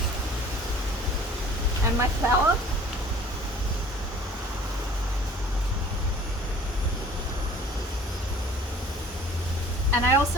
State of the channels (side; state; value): both; normal; correlation 0.50